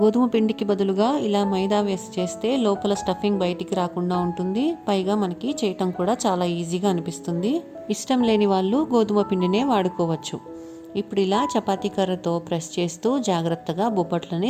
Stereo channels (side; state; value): both; identical; correlation 1.00